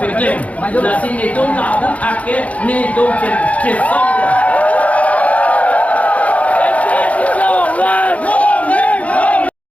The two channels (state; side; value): late; right; 0.067 ms